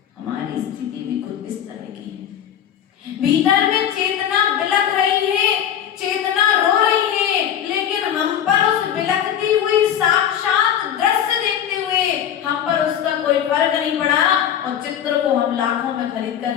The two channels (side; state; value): right; quieter; 9.7 dB